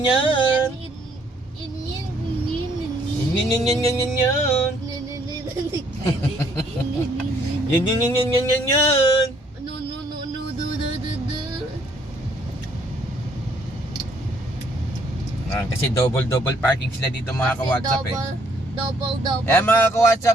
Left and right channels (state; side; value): normal; both; correlation 0.66